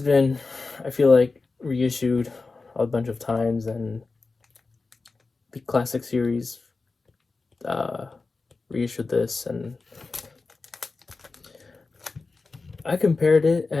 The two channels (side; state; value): right; quieter; 3.9 dB